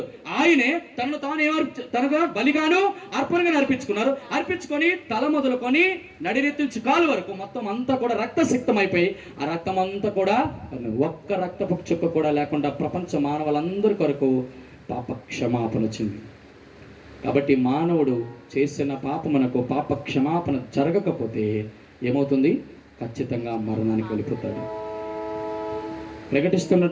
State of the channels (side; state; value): both; identical; correlation 1.00